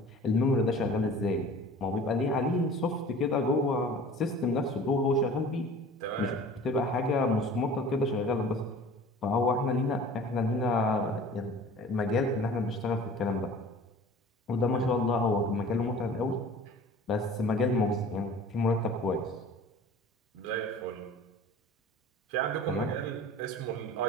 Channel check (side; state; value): both; normal; correlation 0.43